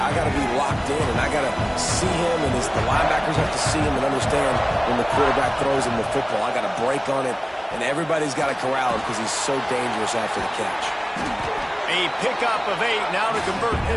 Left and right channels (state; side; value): identical; both; correlation 1.00